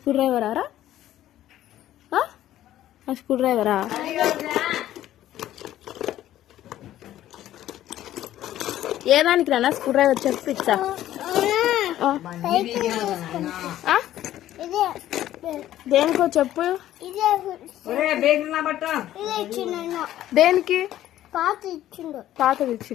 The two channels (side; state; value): right; quieter; 13.1 dB